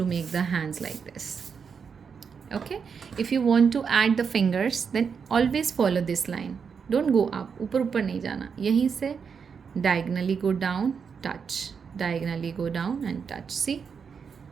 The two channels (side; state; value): left; quieter; 6.2 dB